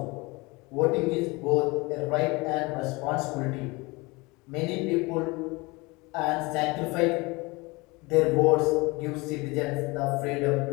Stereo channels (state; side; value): quieter; right; 24.7 dB